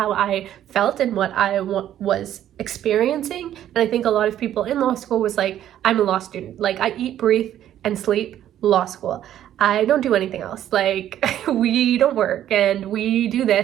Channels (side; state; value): left; quieter; 11.5 dB